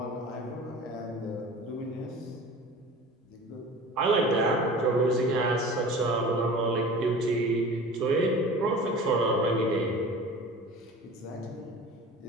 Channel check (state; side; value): normal; both; correlation 0.39